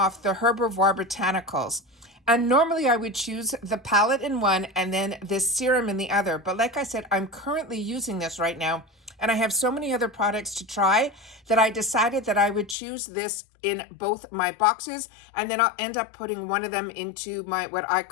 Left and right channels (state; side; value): drops out; right; at 12.8 s